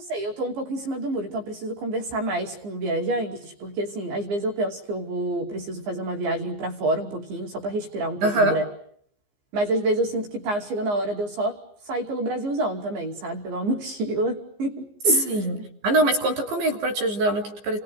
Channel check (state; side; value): late; left; 15 ms